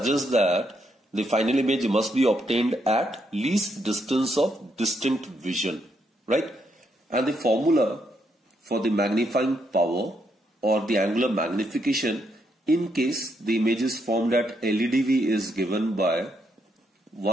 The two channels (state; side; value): normal; both; correlation 0.77